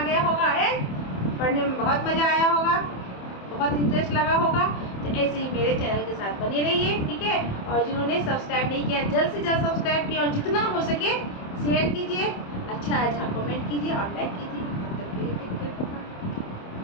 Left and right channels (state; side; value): late; right; 27 ms